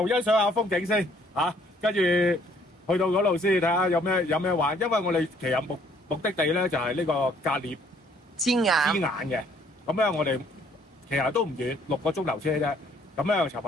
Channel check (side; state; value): both; normal; correlation 0.63